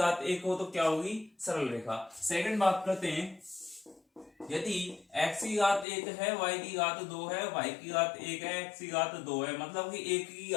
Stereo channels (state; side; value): drops out; right; at 5.9 s